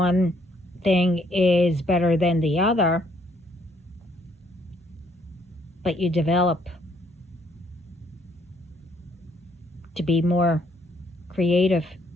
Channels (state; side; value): normal; both; correlation 0.67